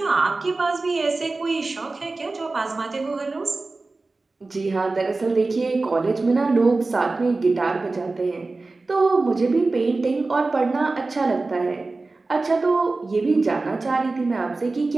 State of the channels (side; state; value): left; quieter; 3.5 dB